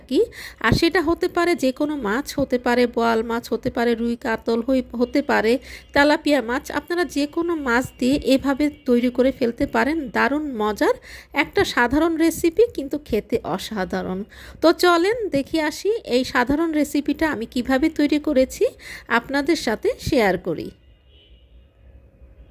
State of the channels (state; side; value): identical; both; correlation 1.00